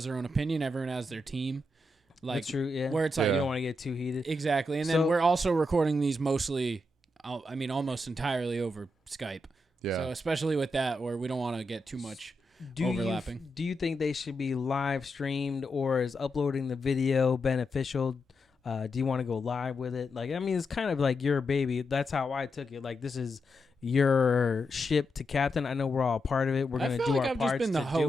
their own opinion, everyone has their team. Like That's true, yeah. where it's You like don't want to get too heated. exactly, and So- then we're also recording these mostly, I mean, almost entirely over Skype. Yeah. So especially with that, where we don't want to get too much overlapping. Do you think they should be live streamed, or is uploading the video beneficial? Do you want to go live with it? Like, I mean, it's kind of like your baby. That's how I took it. Like, this is your ship to captain. I know we're all part of it. We're I gonna feel do like our I've parts just been the to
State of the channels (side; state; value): both; normal; correlation 0.85